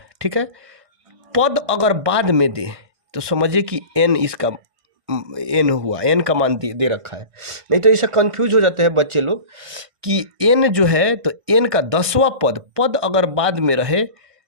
ठीक है, पद अगर बाद में दे तो समझिए कि एन इसका एन हुआ, एन का मान दे रखा है। नहीं तो ऐसा कंफ्यूज हो जाते हैं बच्चे लोग कि एन जो है, तो एन का 10वां पद अगर बाद में रहे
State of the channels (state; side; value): late; left; 1.6 ms